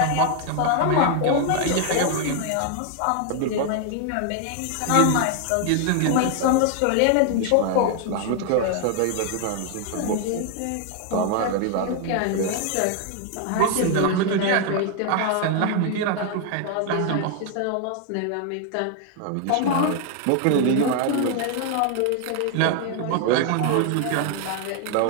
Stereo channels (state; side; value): different; both; correlation 0.00